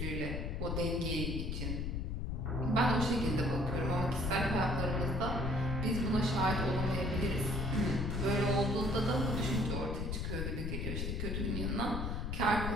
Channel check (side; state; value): left; noise; rumble, 1 dB below the sound